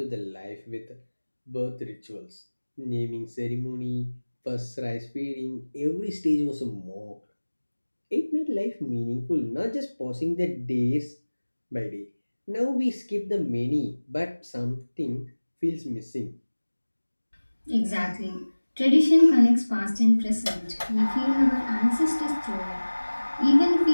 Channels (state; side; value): inverted; both; correlation -1.00